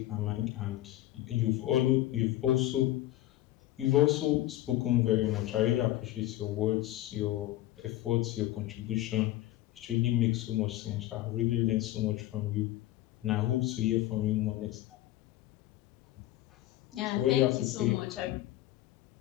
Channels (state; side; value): quieter; right; 15.2 dB